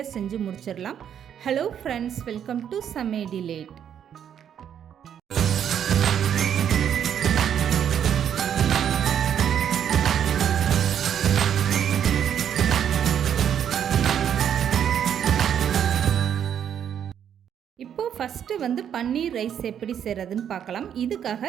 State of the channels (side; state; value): left; quieter; 9.0 dB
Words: செஞ்சு முடிச்சிடலாம். ஹலோ ஃப்ரெண்ட்ஸ், வெல்கம் டு சமைடிலேட். ஃபஸ்ட்டு பன்னீர் ரைஸ் எப்படி செய்கிறதுன்னு பார்க்கலாம். இதுக்காக